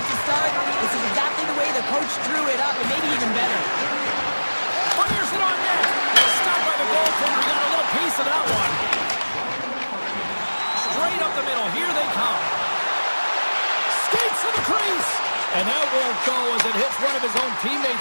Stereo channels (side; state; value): both; inverted; correlation -1.00